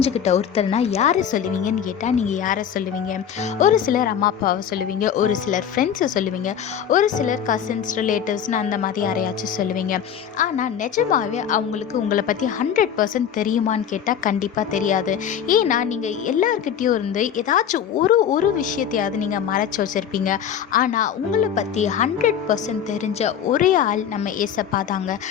ஒருத்தர்னா யாரை சொல்லுவீங்கன்னு கேட்டால் நீங்கள் யாரை சொல்லுவீங்க? ஒரு சிலர் அம்மா அப்பாவை சொல்லுவீங்க, ஒரு சிலர் ஃப்ரெண்ட்ஸை சொல்லுவீங்க, ஒரு சிலர் கசின்ஸ் ரிலேட்டிவ்ஸ்னு அந்த மாதிரி யாரையாச்சும் சொல்லுவீங்க. ஆனால் நிஜமாகவே அவங்களுக்கு உங்களை பற்றி 100% தெரியுமான்னு கேட்டால் கண்டிப்பாக தெரியாது. ஏன்னா நீங்கள் எல்லார்கிட்டேயும் இருந்து ஏதாச்சும் ஒரு விஷயத்தையாவது நீங்கள் மறைச்சி வச்சுருப்பீங்க. ஆனால் உங்களை பற்றி 100% தெரிஞ்ச ஒரே ஆள் நம்ம ஏசப்பா தாங்க.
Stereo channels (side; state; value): right; quieter; 8.6 dB